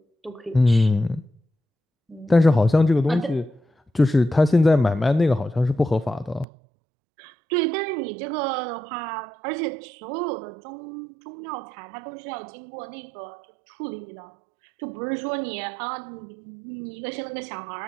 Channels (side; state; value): left; drops out; at 6.5 s